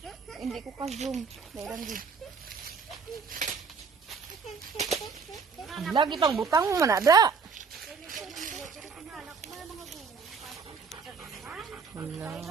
Hindi ko ka-zoom. Dalang gid. Lagi pang butang mo na da. Wala.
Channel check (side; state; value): left; quieter; 5.5 dB